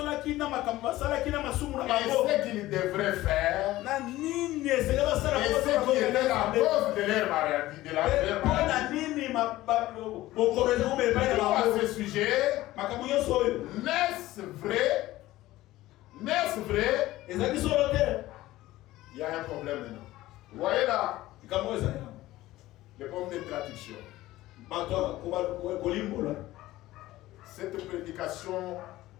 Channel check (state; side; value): quieter; right; 16.6 dB